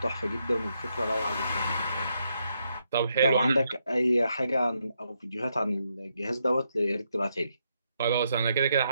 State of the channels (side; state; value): both; inverted; correlation -0.79